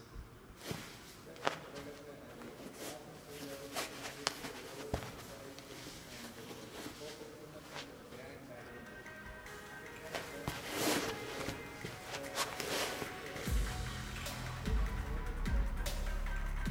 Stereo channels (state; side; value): identical; both; correlation 1.00